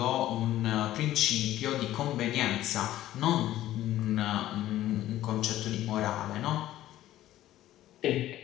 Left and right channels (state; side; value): quieter; right; 14.0 dB